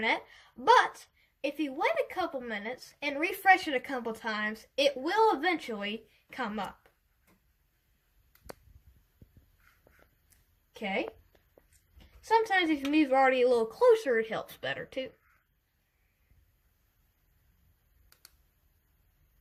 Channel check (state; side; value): identical; both; correlation 1.00